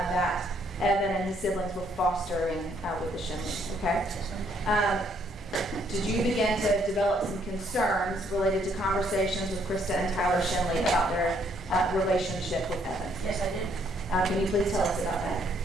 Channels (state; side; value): normal; both; correlation 0.68